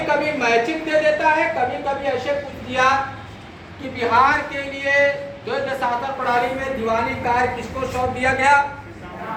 कभी मैचिंग दे देता है, कभी कभी ऐसे पूछ दिया कि बिहार के लिए द्वैध शासन प्रणाली में दीवानी कार्य किसको सौंप दिया गया,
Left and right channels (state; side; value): identical; both; correlation 1.00